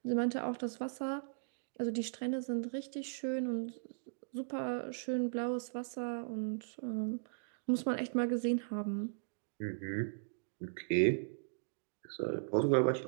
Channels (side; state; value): left; silent; digital silence